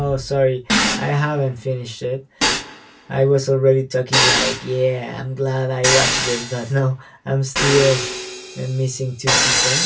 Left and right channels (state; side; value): identical; both; correlation 1.00